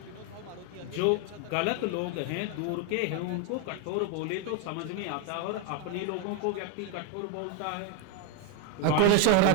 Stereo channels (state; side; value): different; both; correlation 0.01